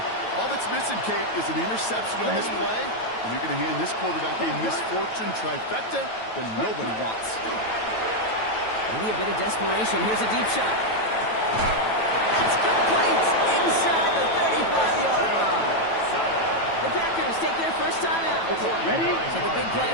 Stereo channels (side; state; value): right; late; 9.1 ms